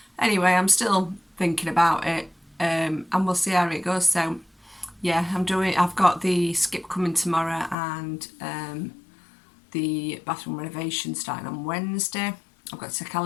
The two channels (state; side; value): drops out; right; at 7.8 s